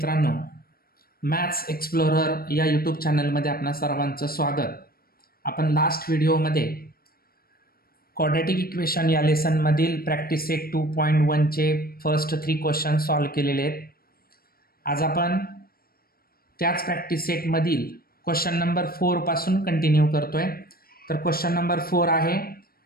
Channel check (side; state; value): right; late; 0.44 ms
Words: मॅथ्स एक्सप्लोरर या यूट्यूब चॅनलमध्ये आपणा सर्वांचं स्वागत. आपण लास्ट व्हिडिओमध्ये क्वाड्रॅटिक इक्वेशन या लेसनमधील प्रॅक्टिस सेट 2.1चे फर्स्ट 3 क्वेश्चन सॉल्व्ह केलेले आहेत. आज आपण त्याच प्रॅक्टिस सेटमधील क्वेश्चन नंबर 4 पासून कंटिन्यू करतोय. तर क्वेश्चन नंबर 4 आहे,